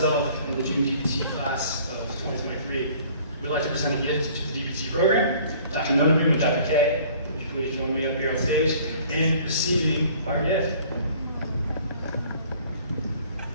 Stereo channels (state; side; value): inverted; both; correlation -0.53